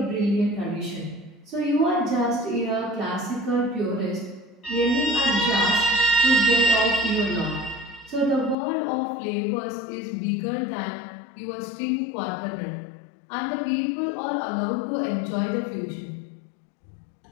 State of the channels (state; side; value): drops out; right; at 8.6 s